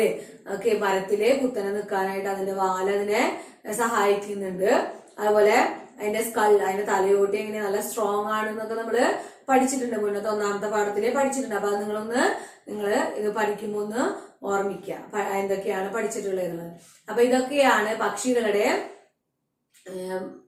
ഒക്കെ മരത്തില് കുത്തനെ നിൽക്കാനായിട്ട് അതിന്റെ വാല് അതിനെ സഹായിക്കുന്നുണ്ട്. അതുപോലെ അതിന്റെ സ്കൾ, അതിന്റെ തലയോട്ടി എങ്ങനെ നല്ല സ്ട്രോങ് ആണെന്നൊക്കെ നമ്മള് പഠിച്ചിട്ടുണ്ട്, മുന്നത്തെ 1ാമത്തെ പാഠത്തില് പഠിച്ചിട്ടുണ്ട്. അപ്പൊ അത് നിങ്ങള് ഇത് പഠിക്കുമ്പോ ഒന്ന് ഓർമ്മിക്കുക എന്തൊക്കെയാണ് പഠിച്ചിട്ടുള്ളത്. അപ്പൊ ഇതൊക്കെയാണ് പക്ഷികളുടെ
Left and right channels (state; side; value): identical; both; correlation 1.00